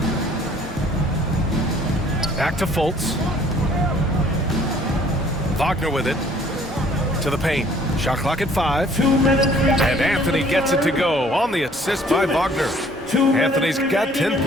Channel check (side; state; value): both; normal; correlation 0.58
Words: Back to Fultz. Wagner with it. To the paint. Shot clock at 5. 2 minutes. And Anthony gets it to go on the assist by Wagner. Anthony's got 10